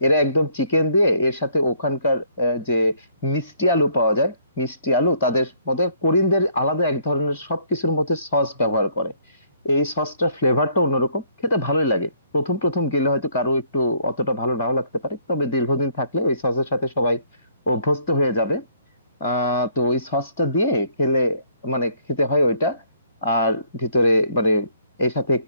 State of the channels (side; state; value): both; inverted; correlation -0.63